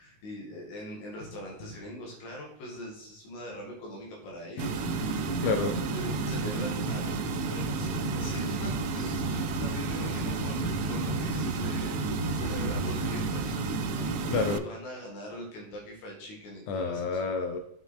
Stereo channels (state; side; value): late; right; 19 ms